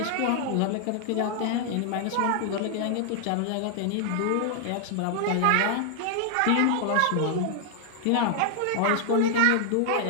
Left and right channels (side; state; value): both; different; correlation 0.00